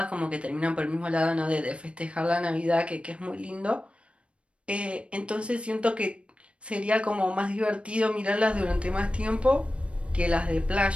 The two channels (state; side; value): late; left; 0.060 ms